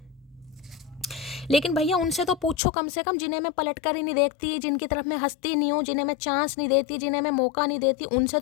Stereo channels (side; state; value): right; drops out; at 2.6 s